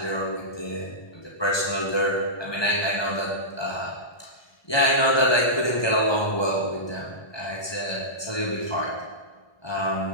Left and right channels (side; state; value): right; late; 1.2 ms